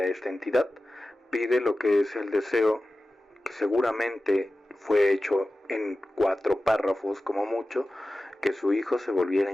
a esta entidad, pide lo que es el deseo, que seguramente fue hecho en 4 párrafos como mucho, que su hijo se volviera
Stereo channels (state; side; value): normal; both; correlation 0.95